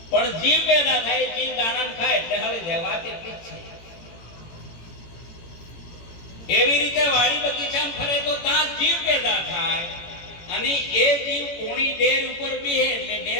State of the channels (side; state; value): right; late; 18 ms